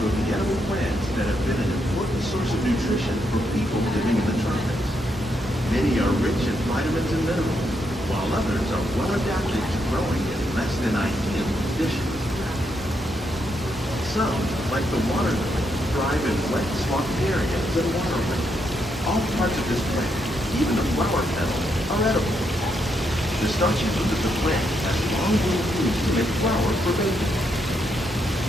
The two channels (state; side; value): normal; both; correlation 0.78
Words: of the edible plants that have been an important source of nutrition for people living in the tropics. Many are rich in vitamins and minerals, while others are well adapted to growing in less than ideal conditions. Some, like the water lily, thrive in wet, swampy areas and waterways. All parts of this plant, even the flower petals, are edible. The starchy root of the plant has long been used to make flour for baking.